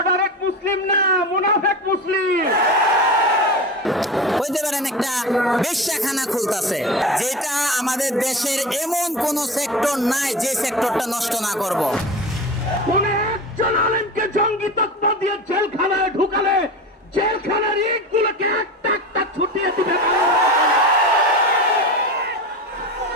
মুসলিম না, মুনাফেক মুসলিম। হইতে পারেন একটা বেশ্যাখানা খুলতেছে, যেটা আমাদের দেশের এমন কোন সেক্টর নাই যে সেক্টরটা নষ্ট না করব। কোন একজন আলেমকে জঙ্গি তকমা দিয়ে জেলখানায় ঢুকালে জেলখানার ইটগুলোকে একটা একটা ছুটিয়ে দিবে।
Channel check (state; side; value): normal; both; correlation 0.28